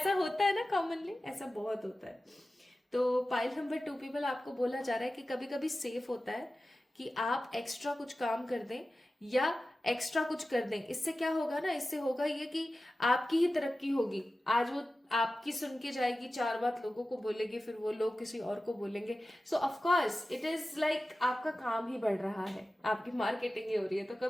होता है ना कॉमनली, ऐसा बहुत होता है। तो पाइल नंबर 2 पीपल, आपको बोला जा रहा है कि कभी कभी सेफ होता है कि आप एक्स्ट्रा कुछ काम कर दें या एक्स्ट्रा कुछ कर दें। इससे क्या होगा ना, इससे होगा ये कि आपकी ही तरक्की होगी। आज वो आपकी सुन के जाएगी, 4 बात लोगों को बोलेंगे, फिर वो लोग किसी और को बोलेंगे। सो of course it is like आपका काम ही बढ़ रहा है, आपकी मार्केटिंग ही हो रही है। तो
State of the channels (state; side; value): normal; both; correlation 0.95